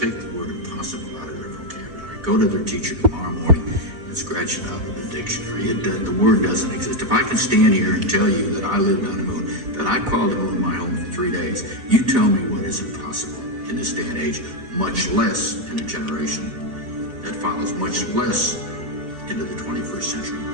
the word impossible out of their vocabulary. Go to their teacher tomorrow morning and scratch it out of the dictionary. The word doesn't exist. If I can stand here and tell you that I lived on the moon, that I called the moon my home for 3 days, you tell me what is impossible in this day and age, much less in a generation that follows, much less into the 21st century.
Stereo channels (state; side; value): late; left; 4.5 ms